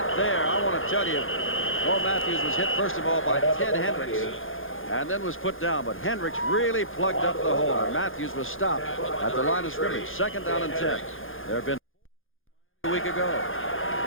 there. I want to tell you, Bo Matthews was hit first of all by Ted Hendricks and then was put down. But Hendricks really plugged up the holder. Matthews was stopped at the line of scrimmage. 2nd down and 10. There have been a week ago.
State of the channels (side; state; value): right; late; 0.59 ms